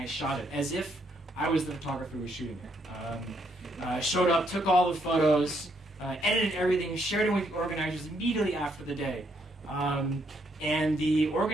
shot it as if I was the photographer who was shooting it. Showed up, took all the photos, edited everything, shared it with the organizers immediately after the day. And the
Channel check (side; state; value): both; normal; correlation 0.73